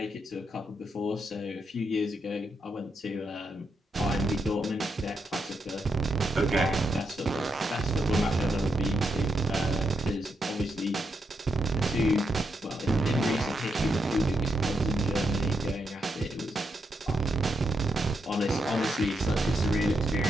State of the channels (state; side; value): normal; both; correlation 0.82